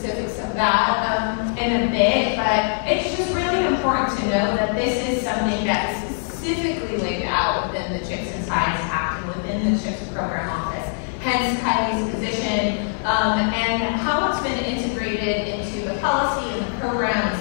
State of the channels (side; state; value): right; silent; digital silence